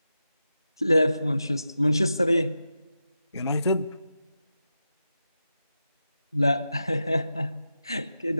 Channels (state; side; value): inverted; both; correlation -0.90